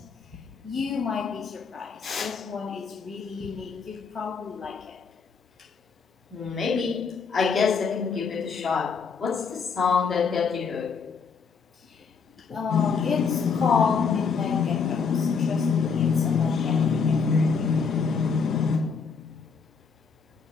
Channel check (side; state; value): right; quieter; 5.6 dB